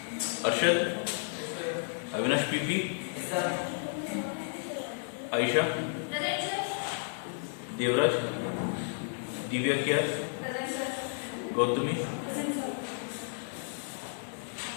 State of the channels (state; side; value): silent; right; digital silence